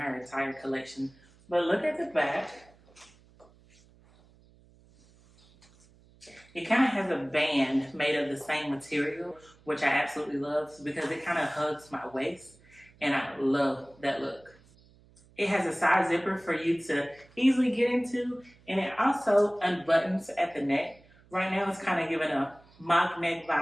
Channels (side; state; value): right; noise; hum, 28 dB below the sound